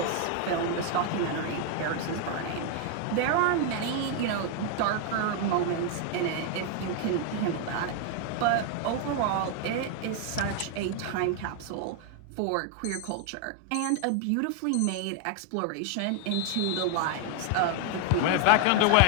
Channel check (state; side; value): different; both; correlation 0.01